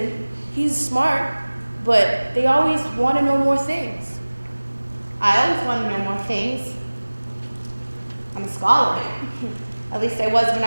he's smart, but they always want to know more things. I always want to know more things. I'm a scholar. At least I was when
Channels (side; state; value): both; inverted; correlation -1.00